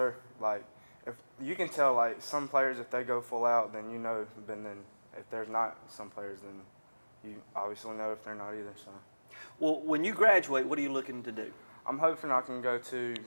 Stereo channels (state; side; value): inverted; both; correlation -1.00